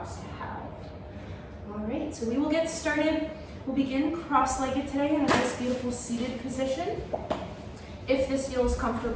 to have. All right, so we will get started. We'll begin cross-legged today in a nice, beautiful seated position. If this feels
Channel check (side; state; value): both; identical; correlation 1.00